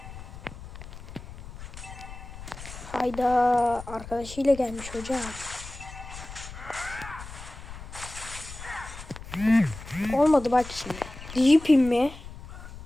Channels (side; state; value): left; noise; rumble, 13 dB below the sound